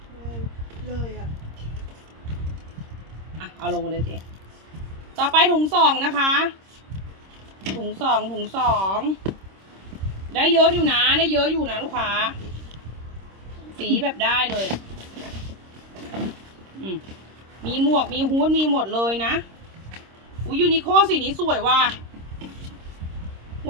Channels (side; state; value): left; late; 26 ms